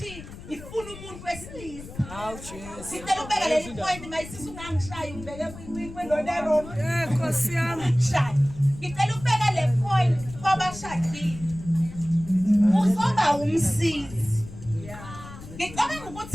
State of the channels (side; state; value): left; noise; rumble, 14 dB below the sound